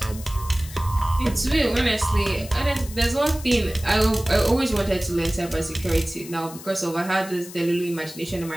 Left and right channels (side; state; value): left; noise; hiss, 15 dB below the sound